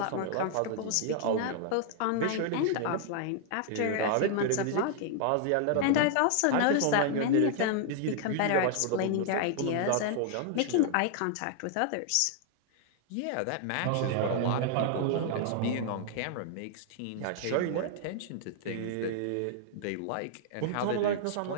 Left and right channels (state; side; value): different; both; correlation 0.00